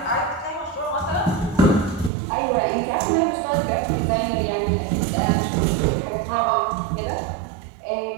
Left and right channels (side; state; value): left; drops out; at 2.1 s